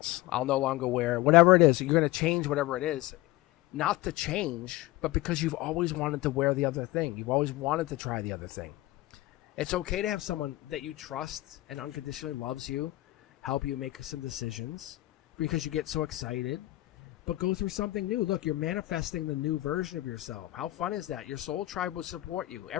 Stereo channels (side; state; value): right; quieter; 17.8 dB